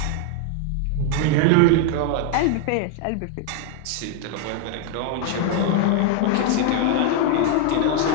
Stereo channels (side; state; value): both; different; correlation 0.00